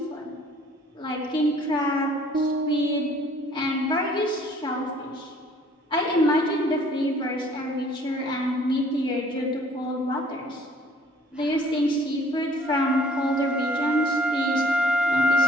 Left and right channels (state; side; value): normal; both; correlation 0.57